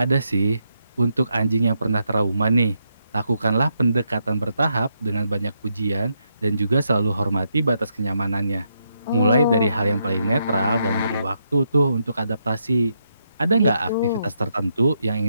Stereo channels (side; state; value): both; inverted; correlation -0.80